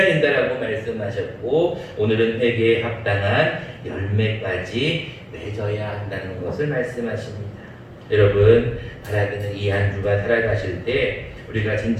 된다라고 말씀하셨고, 오늘은 회개에 합당한 열매까지 맺어야 한다는 것을 말씀하십니다. 여러분, 바라기는 이 한 주간 살아가실 때 우리가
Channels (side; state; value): both; identical; correlation 1.00